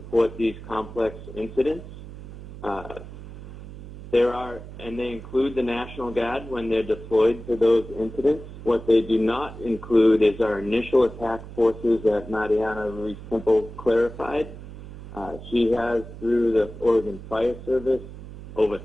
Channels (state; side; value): noise; right; hum, 14 dB below the sound